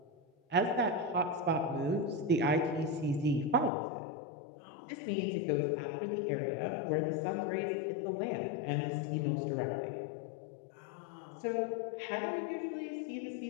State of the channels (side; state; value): right; drops out; at 3.7 s